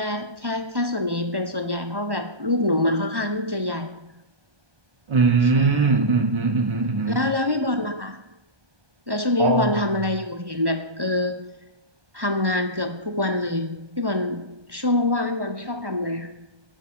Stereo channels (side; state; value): left; late; 1.1 ms